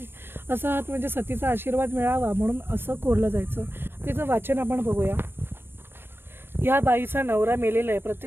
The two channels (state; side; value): late; left; 0.11 ms